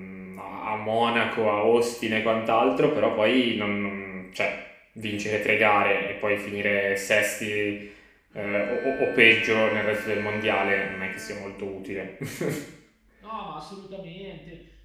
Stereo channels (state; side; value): identical; both; correlation 1.00